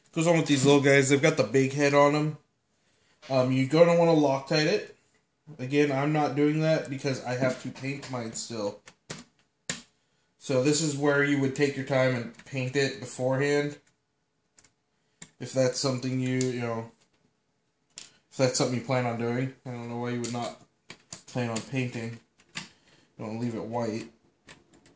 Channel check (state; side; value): identical; both; correlation 1.00